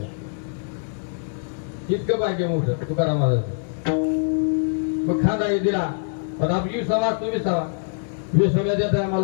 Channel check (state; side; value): silent; right; digital silence